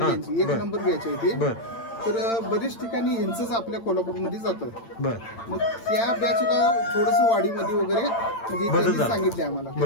1 नंबर बॅच आहे ती. तर बरेच ठिकाणी यांचंच आपल्या कोल्हापूरमध्ये जातं. मग त्या बॅचला थोडस वाढीमध्ये वगैरे म्हणजे सांगितले आम्हाला.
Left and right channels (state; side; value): late; right; 8.9 ms